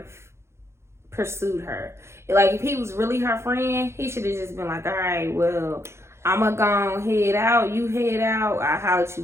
pursued her. Like, if he was really her friend, he should have just been like, all right, well, I'ma go head out, you head out, I'll holler at you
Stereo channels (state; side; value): late; left; 0.13 ms